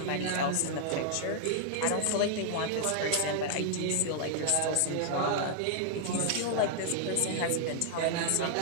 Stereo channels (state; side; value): different; both; correlation 0.00